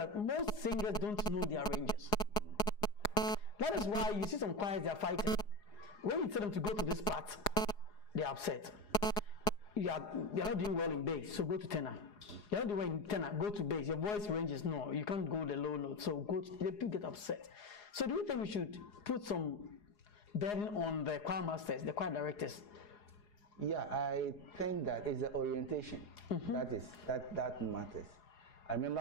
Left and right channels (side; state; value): right; late; 4.8 ms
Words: most singers don't know their ranges. That is why you see some choirs, they are fighting. When you tell them to go to this part, they are upset. They are not doing well in bass, so go to tenor. You are not doing well in tenor, go to bass. Your voice range is no, you can't go the low note, so they do get upset. So do you think we should put some burden on the choir masters, the choir directors? Yeah, I think that is the orientation. That matters. I